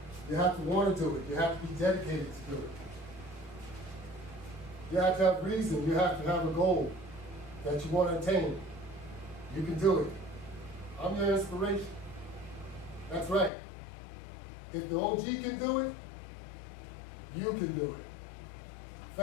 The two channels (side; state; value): right; drops out; at 13.5 s